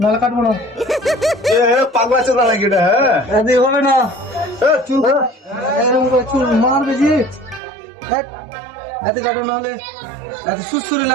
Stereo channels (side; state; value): left; drops out; at 7.6 s